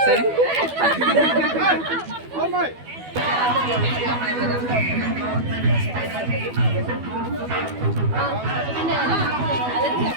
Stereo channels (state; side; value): late; left; 12 ms